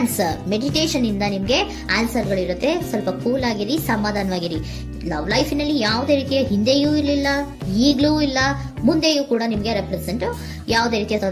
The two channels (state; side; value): identical; both; correlation 1.00